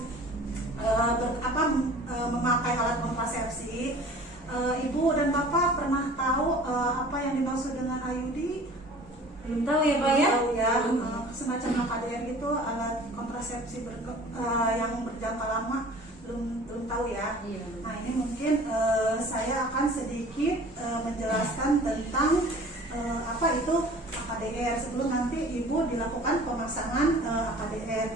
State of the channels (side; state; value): both; normal; correlation 0.46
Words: memakai alat kontrasepsi, Ibu dan Bapak pernah tahu apa yang dimaksud dengan IUD? belum tahu ya Pak ya. Tahu ya, Belum. semacam AKDR itu alat kontrasepsi yang berjangka lama, belum tahu ya. Iya. Nah ini mungkin saya akan sedikit menjelaskan tentang apa itu AKDR sebelum nanti Ibu dilakukan pemasangan AKDR.